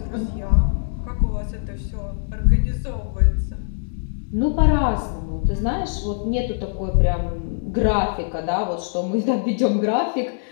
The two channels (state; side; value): silent; right; digital silence